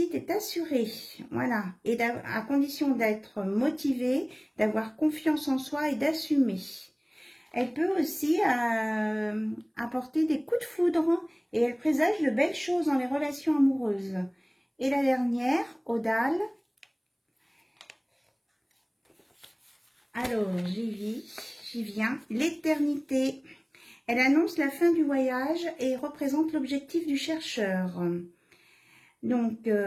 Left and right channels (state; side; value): identical; both; correlation 1.00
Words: est assurée. Voilà. Et à condition d'être motivé, d'avoir confiance en soi et d'assumer. Elle peut aussi apporter des coups de foudre et elle présage de belles choses dans les relations amoureuses. Et la dernière, Odal. Alors, j'y viens. L'éternité. Elle annonce la fin du voyage et représente l'objectif du chercheur. Donc,